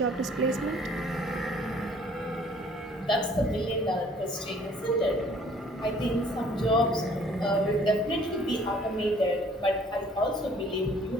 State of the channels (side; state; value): both; normal; correlation 0.57